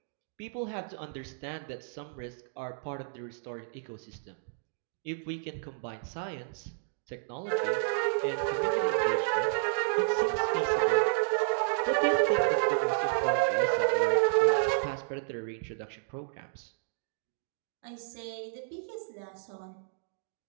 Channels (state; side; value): silent; left; digital silence